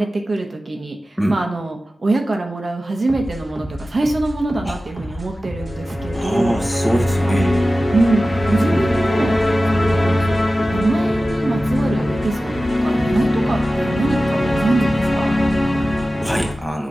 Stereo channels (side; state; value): both; normal; correlation 0.95